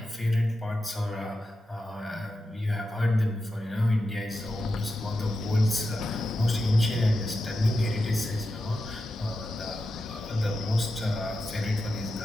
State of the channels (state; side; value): normal; both; correlation 0.90